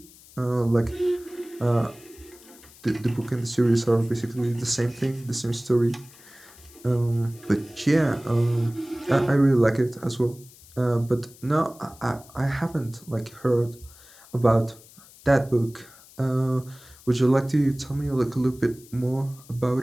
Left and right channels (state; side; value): noise; left; hiss, 23 dB below the sound